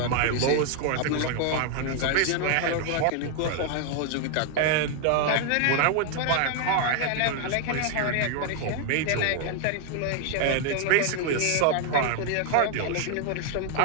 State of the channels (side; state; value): both; different; correlation 0.00